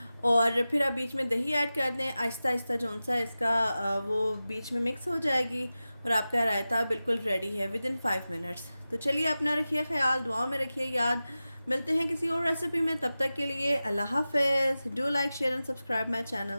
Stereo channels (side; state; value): both; inverted; correlation -0.95